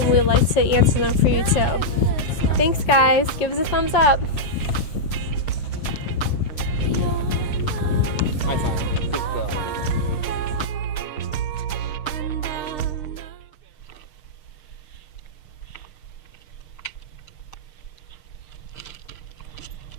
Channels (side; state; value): right; late; 6.6 ms